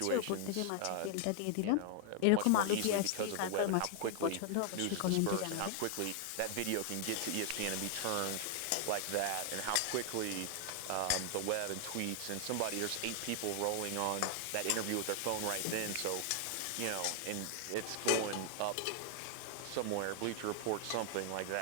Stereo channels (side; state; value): both; different; correlation 0.00